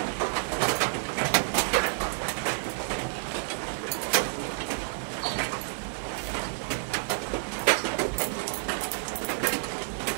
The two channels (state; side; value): silent; left; digital silence